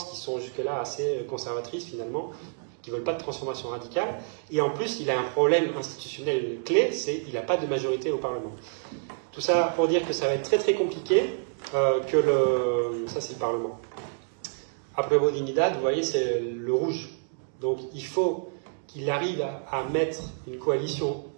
qui sont jusque-là assez conservatrices, finalement, qui ne veulent pas de transformation radicale. Et en plus, il a un problème institutionnel clé, c'est qu'il n'a pas de majorité au Parlement. Tout ça pour dire que ça va être très très compliqué, ça c'est le Parlement. Après Dignidad, vous voyez, c'est le rouge. Donc il faut qu'il arrive à mettre une coalition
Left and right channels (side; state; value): left; silent; digital silence